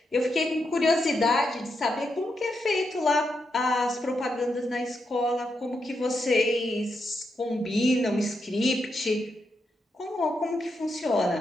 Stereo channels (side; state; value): both; normal; correlation 0.83